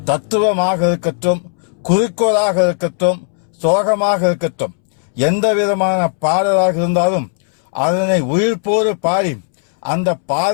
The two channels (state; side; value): silent; right; 69 dB below the other